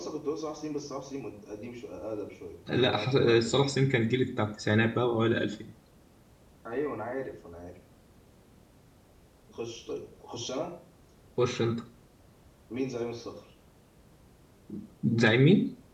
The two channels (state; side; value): identical; both; correlation 1.00